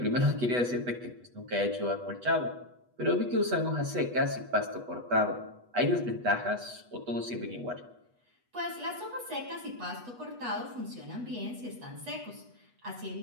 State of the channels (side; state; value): left; late; 8.2 ms